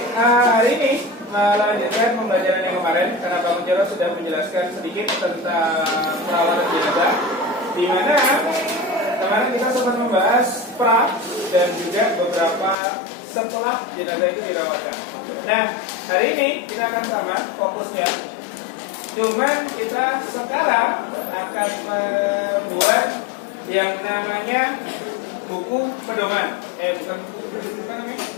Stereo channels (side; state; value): right; drops out; at 12.8 s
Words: hari ini melanjutkan pembelajaran yang kemarin karena Pak Mujaro sudah menjelaskan sedikit tentang perawatan jenazah, di mana kemarin kita sempat membahas pra dan juga beberapa setelah jenazah itu dirawatkan. Nah, hari ini kita akan sama fokusnya. Cuman kita sekarang akan membuat yang namanya buku pedoman. Bukan buku, apa namanya?